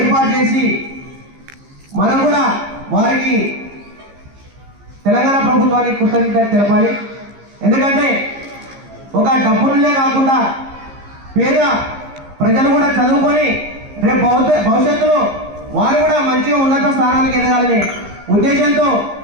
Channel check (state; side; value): late; left; 15 ms